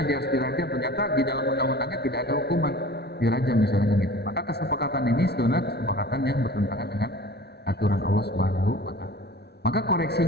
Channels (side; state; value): right; late; 0.48 ms